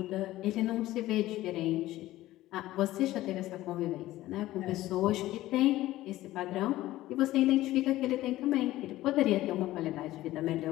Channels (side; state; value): right; quieter; 15.9 dB